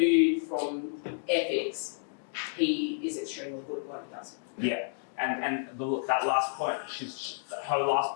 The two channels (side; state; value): right; silent; digital silence